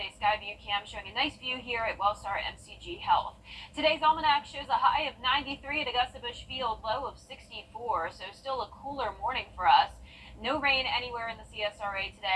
Skyview cam showing a nice view here at Wellstar MCG Health. Today's almanac shows a high of 93 at Augusta Busch Field, low of 64, so still a cooler morning for us. No rain anywhere in the CSRA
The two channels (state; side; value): identical; both; correlation 1.00